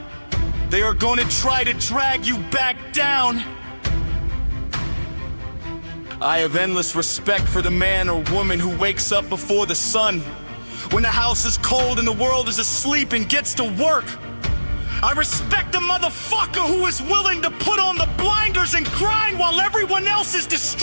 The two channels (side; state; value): both; inverted; correlation -1.00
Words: they are gonna try to drag you back down. I have endless respect for the man or woman who wakes up before the sun, when the house is cold and the world is asleep, and gets to work. I respect the motherfucker who is willing to put on the blinders and grind while everyone else is